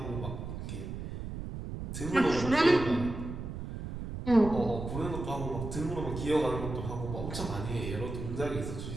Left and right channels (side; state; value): right; noise; rumble, 7 dB below the sound